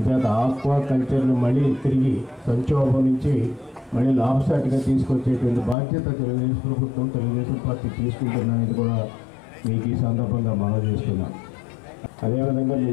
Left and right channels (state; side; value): drops out; right; at 5.8 s